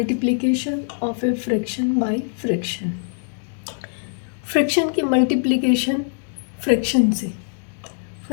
of a fraction by fraction. Fraction की मल्टीप्लिकेशन फ्रैक्शन से।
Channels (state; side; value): silent; right; 64 dB below the other